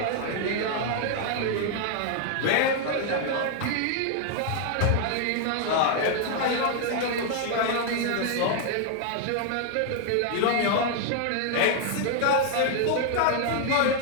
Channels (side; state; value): both; different; correlation 0.00